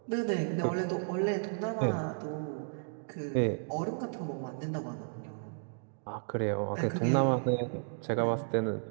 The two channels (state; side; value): silent; left; digital silence